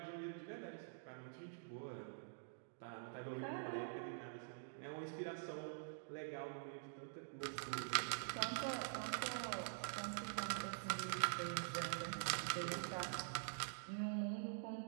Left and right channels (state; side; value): silent; left; digital silence